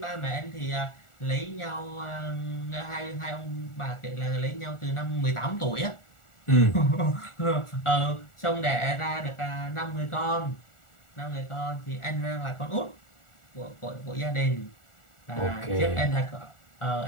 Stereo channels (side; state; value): right; late; 1.4 ms